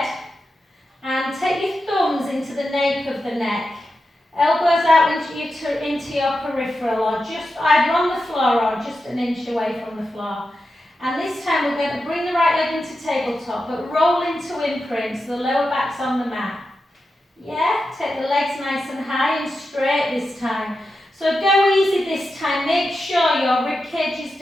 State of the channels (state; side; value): normal; both; correlation 0.90